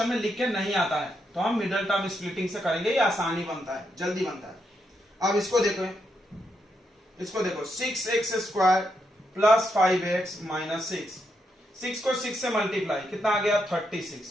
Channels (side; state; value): both; normal; correlation 0.80